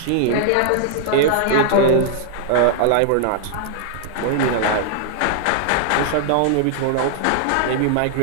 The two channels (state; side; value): different; both; correlation -0.01